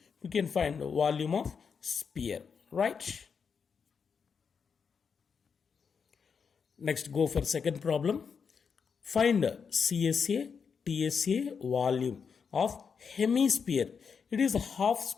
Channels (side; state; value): right; quieter; 6.1 dB